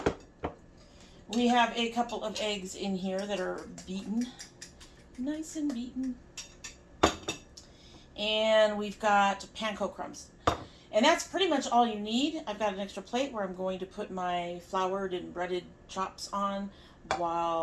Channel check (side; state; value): both; identical; correlation 1.00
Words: We have a couple of eggs in here that are beaten. Nice and beaten. And we've got panko crumbs. And that's pretty much all you need. I've got an extra plate where I'm going to put my floured and breaded chops on